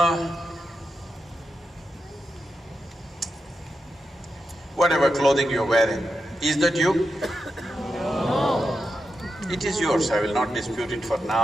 Whatever clothing you're wearing, is that you? No. It is yours, I will not dispute it for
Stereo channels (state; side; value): normal; both; correlation 0.88